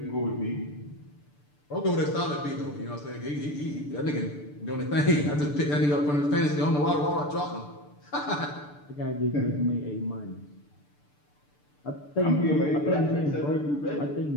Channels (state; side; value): late; right; 6.8 ms